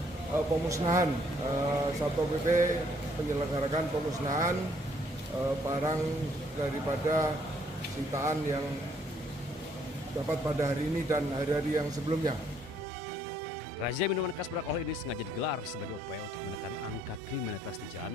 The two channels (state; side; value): normal; both; correlation 0.66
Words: pemusnahan. Satpol PP menyelenggarakan pemusnahan barang daripada sitaan yang dapat pada hari ini dan hari-hari yang sebelumnya. Razia minuman keras beralkohol ini sengaja digelar sebagai upaya untuk menekan angka kriminalitas di